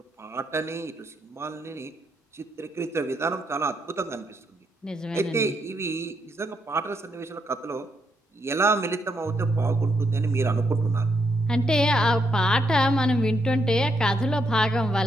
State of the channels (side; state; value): both; normal; correlation 0.78